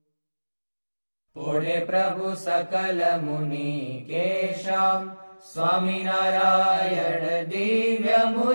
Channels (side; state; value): both; inverted; correlation -1.00